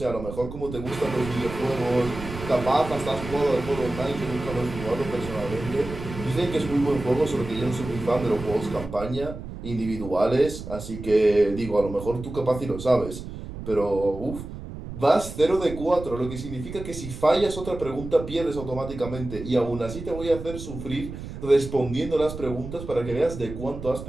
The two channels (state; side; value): noise; right; rumble, 10 dB below the sound